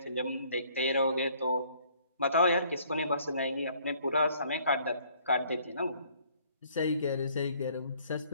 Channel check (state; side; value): inverted; both; correlation -0.61